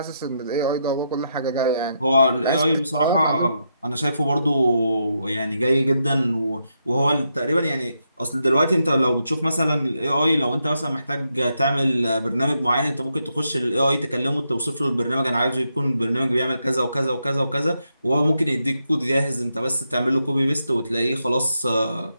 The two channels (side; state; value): both; inverted; correlation -0.82